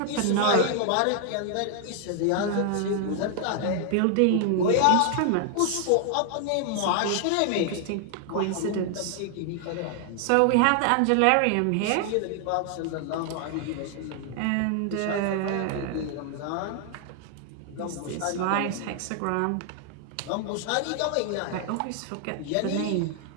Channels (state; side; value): different; both; correlation 0.00